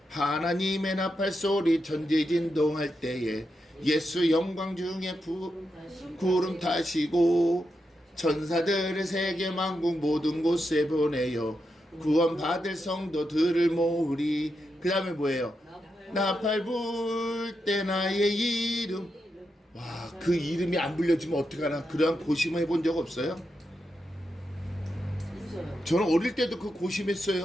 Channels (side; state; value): both; normal; correlation 0.86